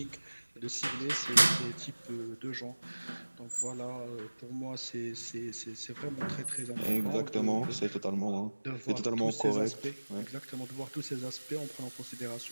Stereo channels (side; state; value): both; inverted; correlation -1.00